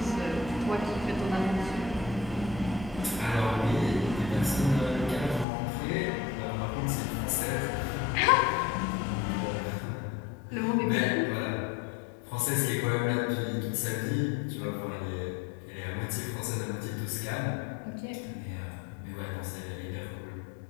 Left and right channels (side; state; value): right; drops out; at 5.5 s